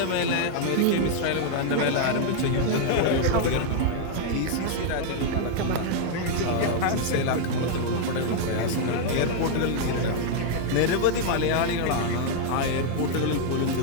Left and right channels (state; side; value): different; both; correlation 0.00